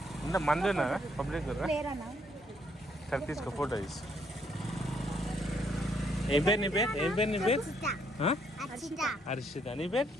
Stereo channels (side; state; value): both; normal; correlation 0.70